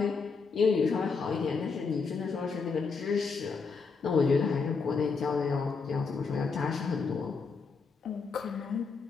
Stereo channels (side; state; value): right; quieter; 4.9 dB